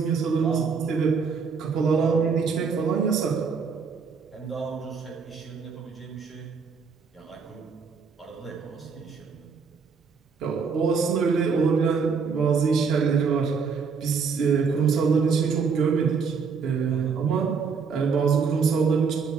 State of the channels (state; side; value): quieter; left; 5.5 dB